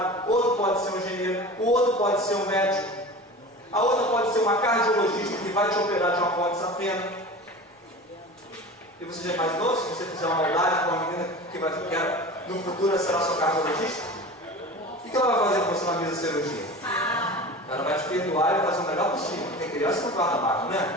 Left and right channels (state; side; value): normal; both; correlation 0.34